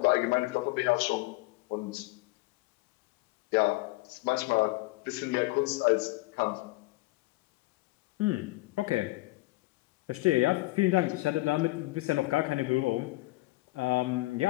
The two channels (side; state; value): right; quieter; 21.0 dB